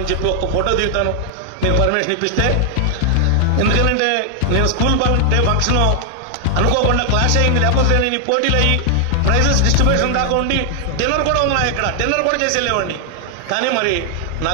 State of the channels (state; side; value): different; both; correlation 0.00